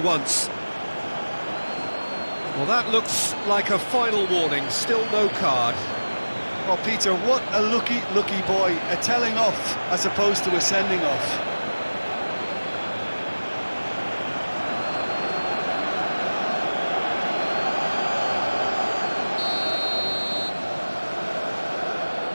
once. Well, that looks like a final warning, still no card. Oh, Peter, what a lucky boy. A telling off as opposed to a sending off.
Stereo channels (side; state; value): both; inverted; correlation -1.00